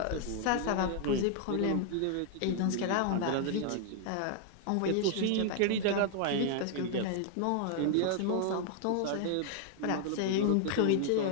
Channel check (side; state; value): both; different; correlation 0.00